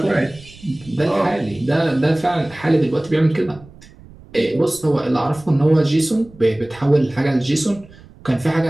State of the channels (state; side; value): noise; right; rumble, 22 dB below the sound